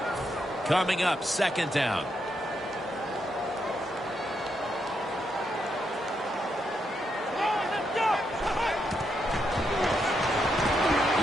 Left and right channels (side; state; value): both; normal; correlation 0.80